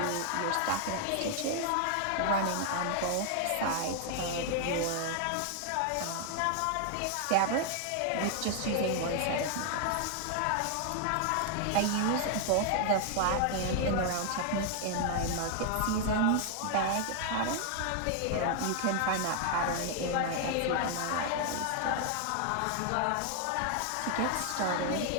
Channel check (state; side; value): different; both; correlation 0.00